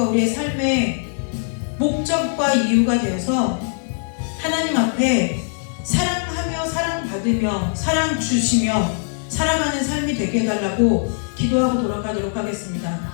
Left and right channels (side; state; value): right; silent; digital silence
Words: 우리의 삶의 목적과 이유가 되어서 하나님 앞에 사랑하며 사랑받으며 사랑 주시며 살아가는 삶이 되게 해달라고 기도하고 돌아가도록 하겠습니다.